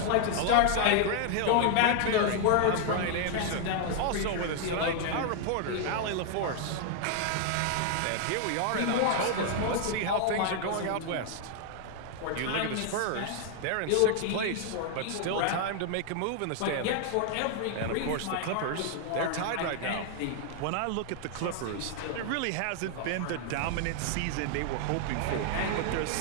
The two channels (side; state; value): both; different; correlation 0.00